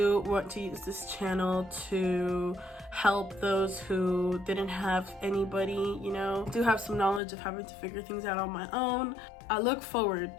want to use this channel to help those who didn't have anybody, you know. I do have some knowledge of having to figure things out on my own. I look forward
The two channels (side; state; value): right; drops out; at 7.2 s